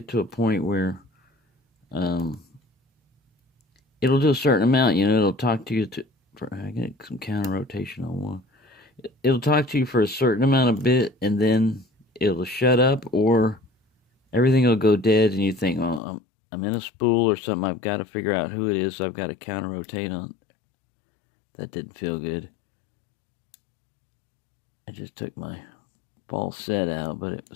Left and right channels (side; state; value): right; drops out; at 16.0 s